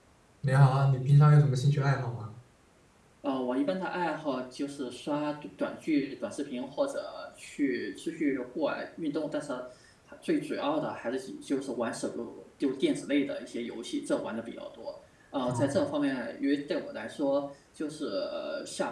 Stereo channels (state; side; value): identical; both; correlation 1.00